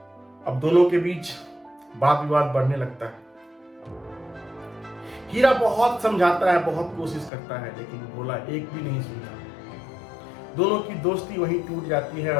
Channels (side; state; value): right; drops out; at 7.3 s